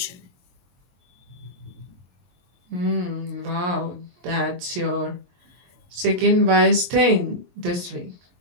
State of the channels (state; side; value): late; left; 23 ms